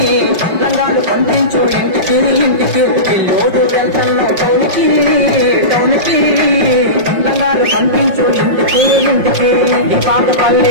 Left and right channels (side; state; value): left; late; 5.7 ms